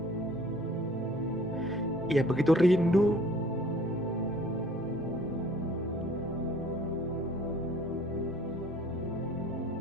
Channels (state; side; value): normal; both; correlation 0.52